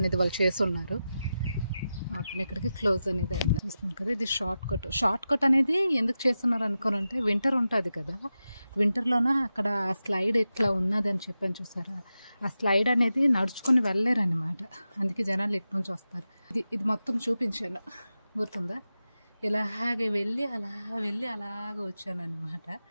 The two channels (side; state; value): both; inverted; correlation -0.92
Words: వాళ్ళు చేసి ఉన్నారు. మొత్తం ఇక్కడికి క్లోజ్ అనేది అయింది చూస్తున్నాం కదా. ఇది షార్ట్ కట్ అనేది ఎందుకు చేస్తున్నారు అనుకోనంటే, వింటర్ ఉంటుంది కదా, వింటర్లోన అక్కడ ఆ స్లైడ్ ఇట్లా ఉన్నది అని చెప్పని చూసారా, ఆ స్లైడ్ అనేది నడుచుకొని వెళ్ళలేరు అనమాట. అందుకే జనాలు ఇటు నుంచి వస్తారు. ఇది మొత్తం చూపించాను, గుర్తుందా? ఇలాగే వెళ్ళి అలాగ వచ్చాను అనమాట.